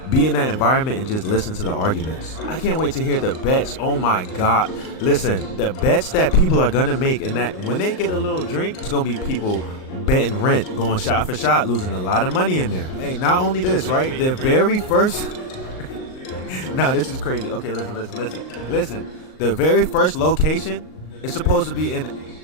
be in that environment and just listen to the arguments. I can't wait to hear the bets. Oh my God. Listen, the bets that people are gonna make, and that when they get a little drink, it's gonna be people betting rent, going shot for shot, losing a lot of money in there. Hey, not only this, right? The very first no, this is crazy. Okay, listen. The very first location is supposed to be in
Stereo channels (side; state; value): right; late; 38 ms